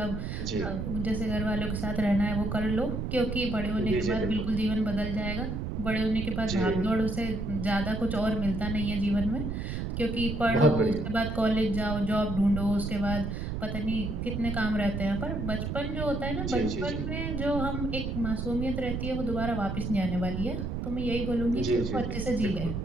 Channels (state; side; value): noise; right; rumble, 3 dB below the sound